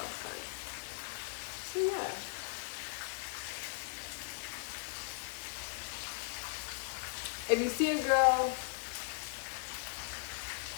time. So yeah. If you see a girl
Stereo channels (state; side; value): silent; right; digital silence